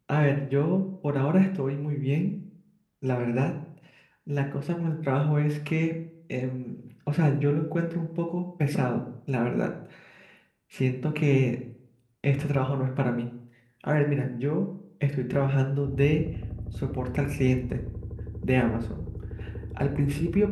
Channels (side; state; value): both; identical; correlation 1.00